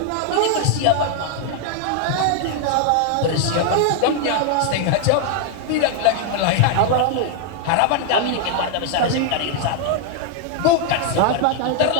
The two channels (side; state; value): both; different; correlation 0.00